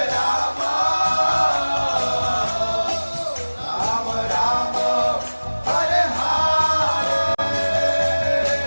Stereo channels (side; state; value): both; inverted; correlation -1.00